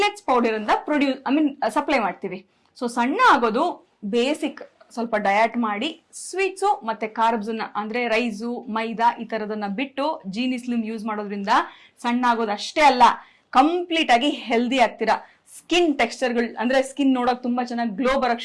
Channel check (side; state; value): both; identical; correlation 1.00